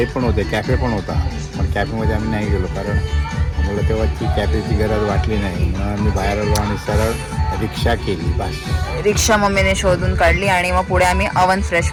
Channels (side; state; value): both; identical; correlation 1.00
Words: पण होते, कॅफे पण होता, पण कॅफेमध्ये आम्ही नाही गेलो कारण आम्हाला तेव्हा ती कॅफेची गरज वाटली नाही, म्हणून आम्ही बाहेर आलो आणि सरळ रिक्षा केली बस. रिक्षा मम्मीने शोधून काढली आणि मग पुढे आम्ही अवन